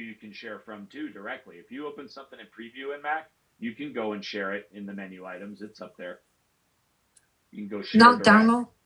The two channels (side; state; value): both; identical; correlation 1.00